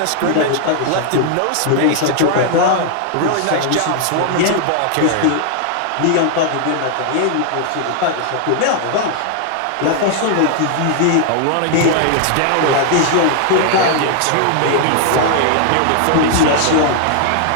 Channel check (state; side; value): different; both; correlation 0.00